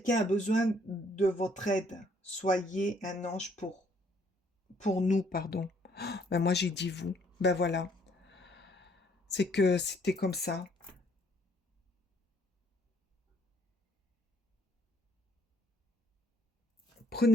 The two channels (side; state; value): both; normal; correlation 0.65